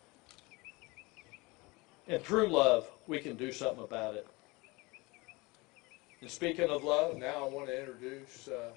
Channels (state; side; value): quieter; right; 24.3 dB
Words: And through love, we can do something about it. And speaking of love, now I want to introduce